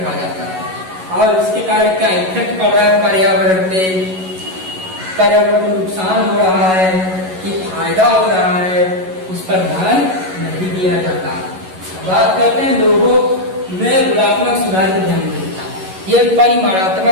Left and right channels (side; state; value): left; late; 11 ms